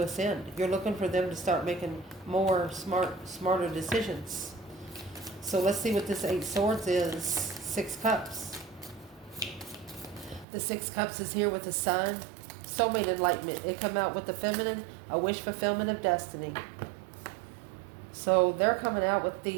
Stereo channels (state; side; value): drops out; left; at 10.5 s